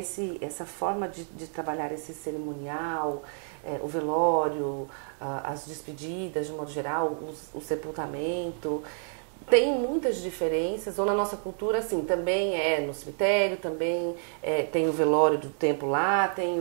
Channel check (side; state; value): left; silent; 59 dB below the other